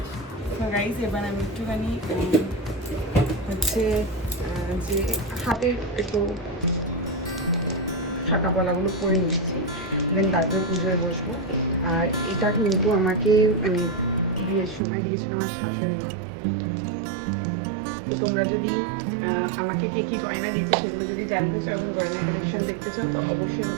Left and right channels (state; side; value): drops out; left; at 14.8 s